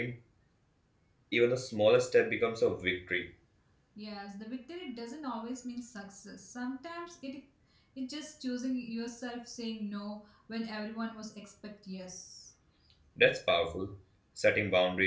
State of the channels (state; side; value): identical; both; correlation 1.00